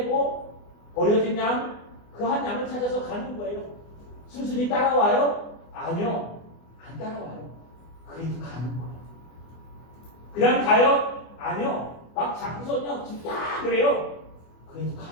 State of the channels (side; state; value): right; late; 24 ms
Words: 버려진 양, 그 한 양을 찾아서 가는 거예요. 순순히 따라와요? 아니요, 안 따라와요. 그래도 가는 거예요. 그냥 가요? 아니요, 막 잡고서요, 진짜 그래요. 그래도